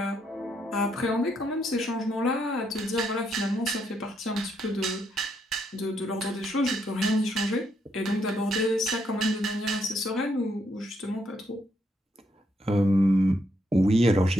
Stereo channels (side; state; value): both; normal; correlation 0.76